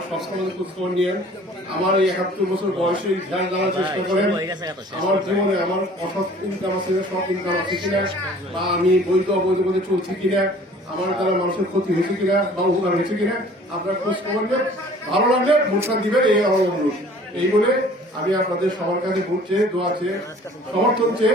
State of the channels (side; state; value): both; normal; correlation 0.50